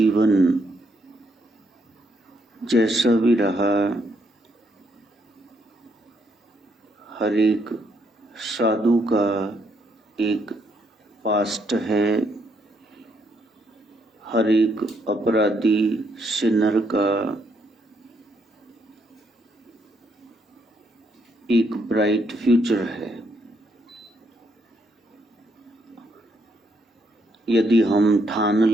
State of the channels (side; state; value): both; normal; correlation 0.74